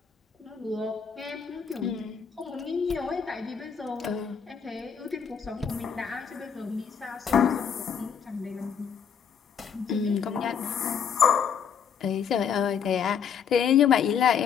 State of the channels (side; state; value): right; quieter; 7.3 dB